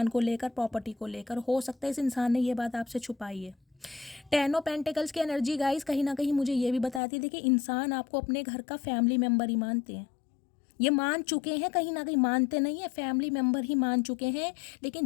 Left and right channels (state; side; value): drops out; right; at 7.0 s